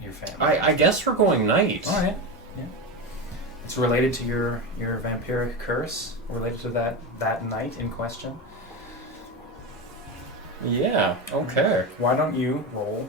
your family. I guess we're going night. All right. Yeah. It's related to your vampiric curse, related to that night in question. Yeah, okay. Why don't you roll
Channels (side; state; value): both; normal; correlation 0.18